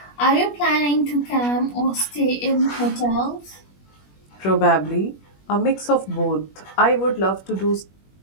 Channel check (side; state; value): right; late; 21 ms